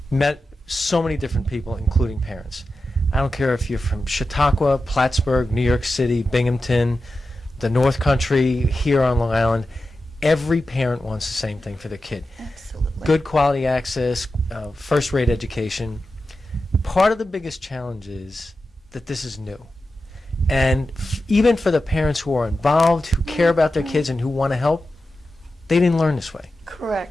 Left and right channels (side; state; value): both; normal; correlation 0.92